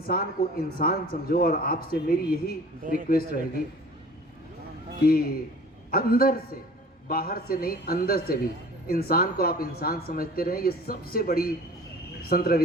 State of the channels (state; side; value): normal; both; correlation 0.45